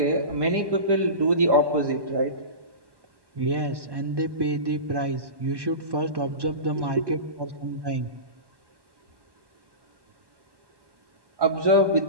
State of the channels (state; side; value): late; left; 1.1 ms